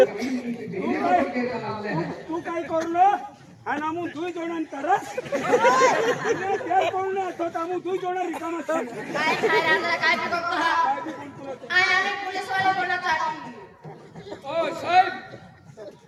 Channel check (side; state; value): both; identical; correlation 1.00